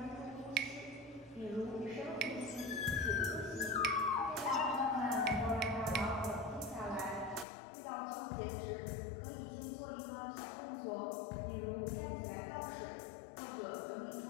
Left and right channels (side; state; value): right; drops out; at 7.5 s